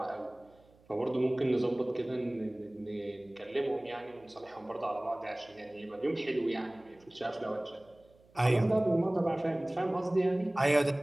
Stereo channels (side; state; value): right; noise; hum, 29 dB below the sound